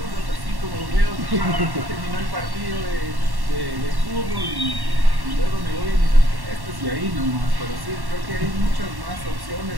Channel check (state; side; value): late; left; 1.1 ms